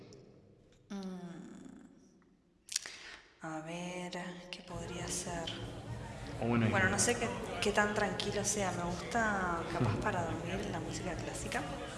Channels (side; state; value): both; identical; correlation 1.00